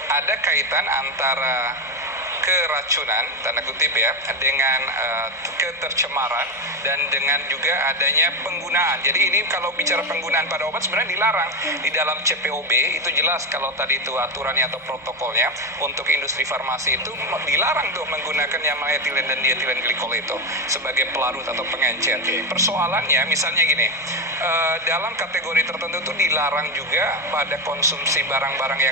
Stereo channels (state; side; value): normal; both; correlation 0.14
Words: ada kaitan antara keracunan, tanda kutip ya, dengan ketercemaran dan dengan juga adanya penggunaan. Jadi ini kalau bicara penggunaan pada obat sebenarnya dilarang. Di dalam CPOB itu jelas kalau tadi itu aturannya atau protokolnya untuk industri farmasi itu dilarang tuh menggunakan yang etilen dan dietilen glikol itu sebagai pelarut atau pengencer. Persoalannya misalnya gini, dalam kategori tertentu itu dilarang juga pada konsumsi barang-barang